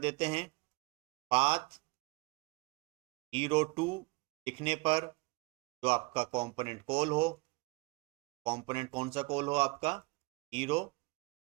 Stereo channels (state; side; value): quieter; left; 24.9 dB